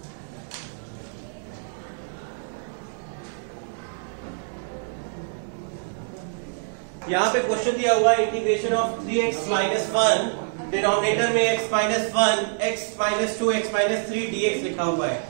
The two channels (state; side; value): silent; left; 61 dB below the other